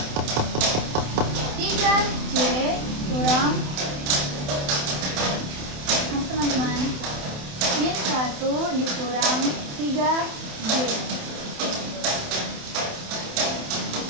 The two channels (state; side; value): late; left; 28 ms